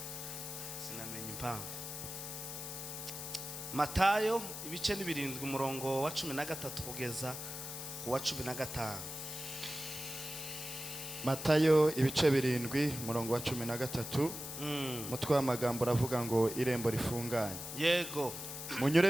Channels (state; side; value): noise; left; hiss, 8 dB below the sound